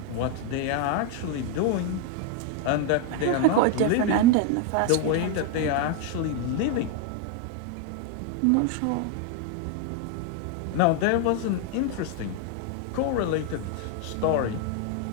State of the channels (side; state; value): both; different; correlation 0.01